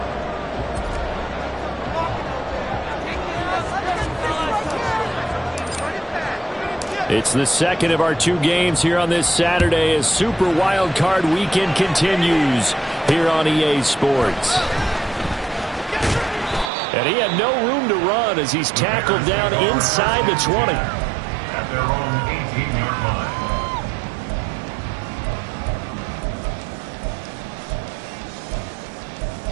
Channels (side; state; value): left; drops out; at 16.7 s